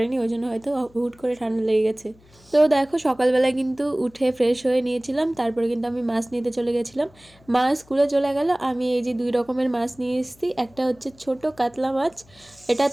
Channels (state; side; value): noise; left; hum, 28 dB below the sound